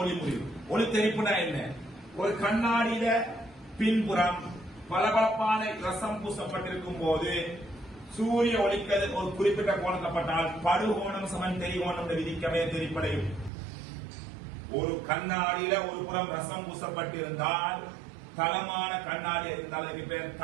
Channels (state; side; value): drops out; left; at 13.5 s